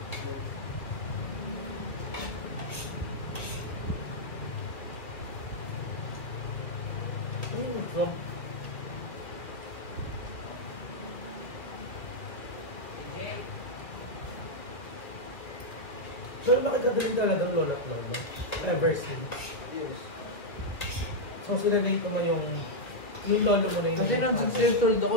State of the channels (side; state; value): right; late; 2.2 ms